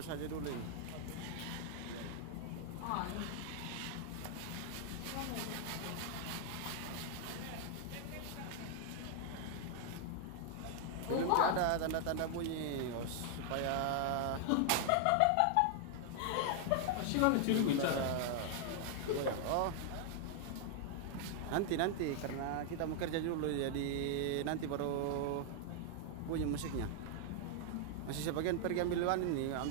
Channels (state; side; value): different; both; correlation 0.00